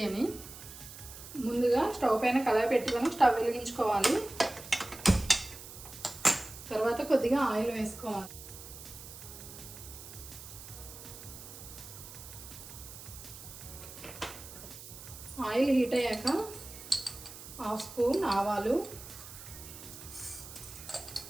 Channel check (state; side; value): noise; right; hiss, 14 dB below the sound